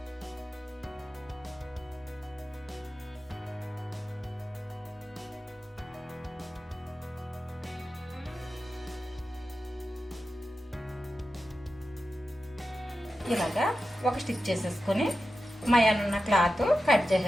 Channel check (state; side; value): normal; both; correlation 0.92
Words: ఇలాగా ఒక స్టిచ్ చేసేసుకుని మయానున్న క్లాత్ కట్